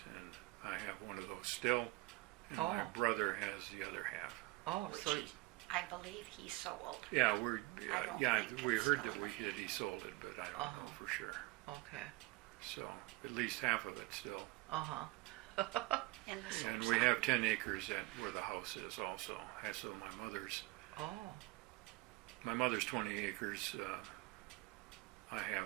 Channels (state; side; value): quieter; left; 22.3 dB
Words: and I have one of those still, and my brother has the other half. Oh, Which so I believe he sold. Yeah, I don't think we it's heard that still he sold it, but I don't know for sure. okay. So at least half of it still. In the And Sopscak. we have 10 acres at where the house is also. So my mother's 20 acres. I